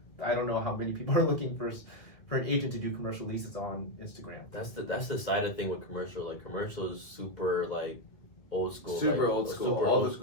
I don't know how many people are looking for an agent to do commercial leases on Instagram. That's the side of thing with commercial. Like commercial is super like old school. Super like, old school. Super All old the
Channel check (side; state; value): right; late; 2.0 ms